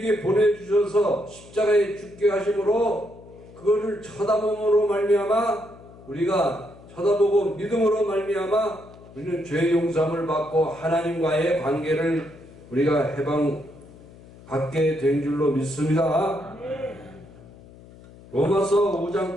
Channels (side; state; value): left; noise; hum, 21 dB below the sound